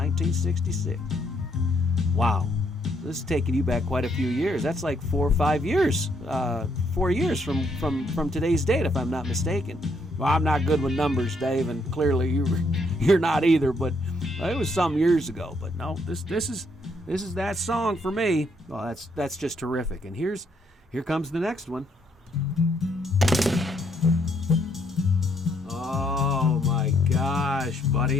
Wow, this is taking you back quite a few years. That's like 4 or 5 years. 4 years from today's date, if I'm not mistaken. Well, I'm not good with numbers, Dave, and clearly you're not either. But it was some years ago. But no, this is that song for me. Well, that's just terrific. And here comes the next one. Oh my gosh,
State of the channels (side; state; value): both; normal; correlation 0.72